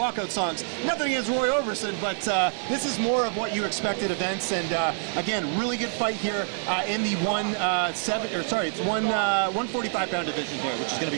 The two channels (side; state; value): left; silent; 61 dB below the other